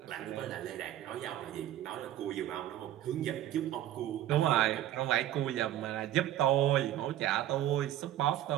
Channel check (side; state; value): left; quieter; 12.7 dB